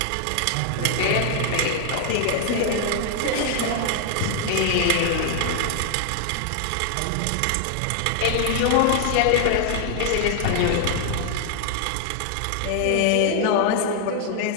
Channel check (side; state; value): both; different; correlation 0.00